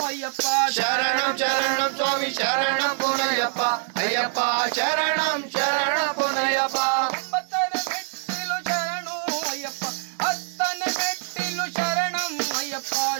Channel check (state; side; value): silent; left; digital silence